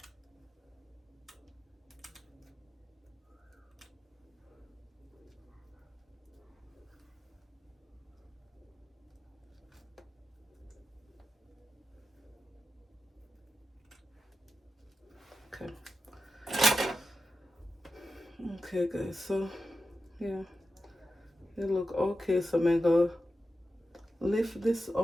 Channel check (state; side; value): normal; both; correlation 0.91